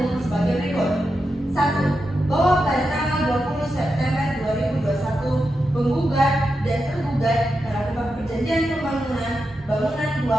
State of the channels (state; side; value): normal; both; correlation 0.88